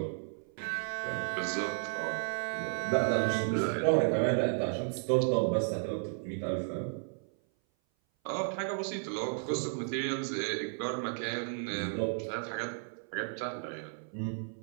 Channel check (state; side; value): silent; left; 55 dB below the other